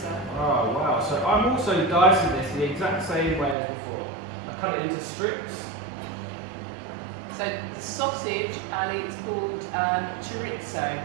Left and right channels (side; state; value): left; drops out; at 3.6 s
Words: Oh wow! So I'm also dicing this the exact same way as before. I cut it into strips. So the sausage, Ali, it's called chorizo.